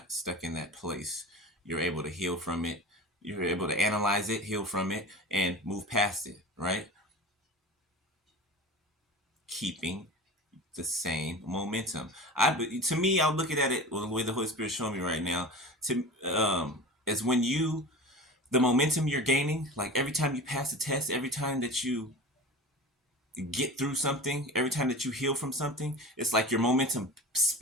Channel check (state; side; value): normal; both; correlation 0.34